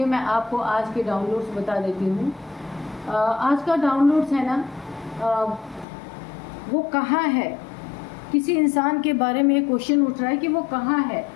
मैं आपको आज के डाउनलोड्स बता देती हूँ। आज का डाउनलोड्स है ना, वो कहाँ है, किसी इंसान के बारे में क्वेश्चन उठ रहा है कि वो कहाँ है,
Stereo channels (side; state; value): right; drops out; at 5.9 s